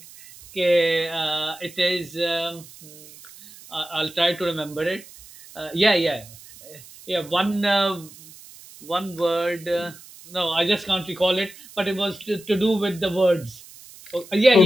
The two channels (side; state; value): right; noise; hiss, 20 dB below the sound